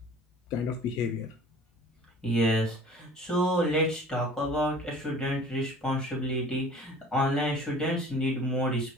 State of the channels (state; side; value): normal; both; correlation 0.46